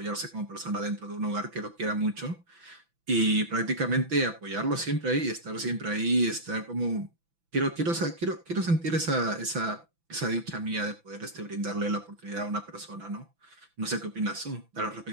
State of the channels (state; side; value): late; left; 6.0 ms